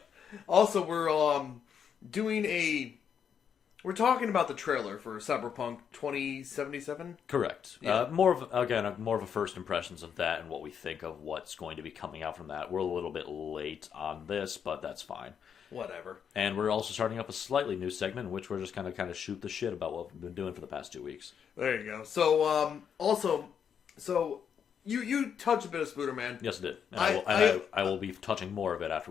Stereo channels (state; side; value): quieter; right; 7.7 dB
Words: Also, we're we're talking about the trailer for Cyberpunk 2077. Correct. Yeah. More of a first impressions of that and what we think of what's going to be coming out from that. We're a little bit late on this, but that's fine. Whatever. And we're also starting up a slightly new segment in which we're just kind of shoot the shit about what we've been doing for the past 2 weeks. There you go. So, you touched a bit of Spooderman. Yes, I did. And I will be touching more of it